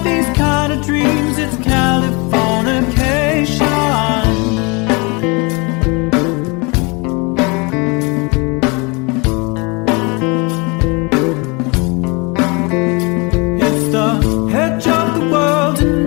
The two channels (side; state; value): right; quieter; 28.9 dB